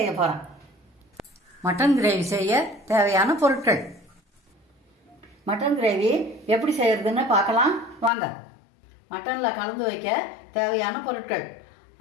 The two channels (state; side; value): drops out; right; at 8.1 s